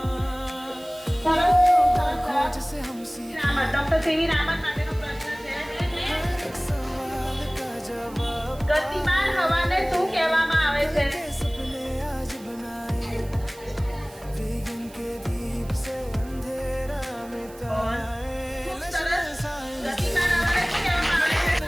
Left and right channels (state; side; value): noise; right; hiss, 22 dB below the sound